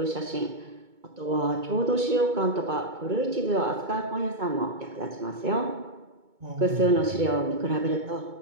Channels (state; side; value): late; left; 2.2 ms